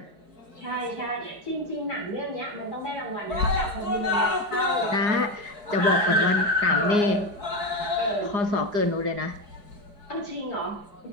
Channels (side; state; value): left; late; 4.7 ms